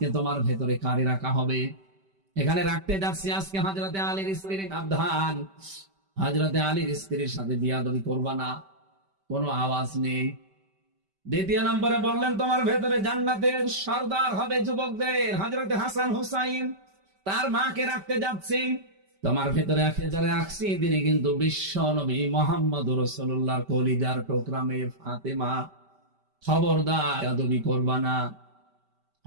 তোমার ভেতরে কারে রাখা হবে? এখানে রাখতে যাচ্ছি আজকে হযরতে আলীর স্ত্রীর সাবধান, হযরতে আলীর স্ত্রীর সাথে বিয়াদবি করবা না। কোনো আওয়াজ নেই। দ্বিতীয় নম্বরে বললেন, তোমার ভেতরে জান্নাতের সর্দার হবে যুবকদের, হযরতে হাসান হুসাইন, তার মাকে রাখতে যাচ্ছি। তোমার ভেতরে যারা রাখছি তিনি কিন্তু বিশ্ব নবী মুহাম্মদ রাসূলুল্লাহর কলিজার টুকরা মেয়ে ফাতেমা। খবরদার বেয়াদবি করবা না।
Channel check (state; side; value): late; left; 5.1 ms